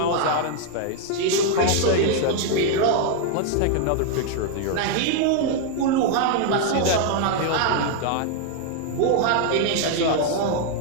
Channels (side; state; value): both; different; correlation 0.00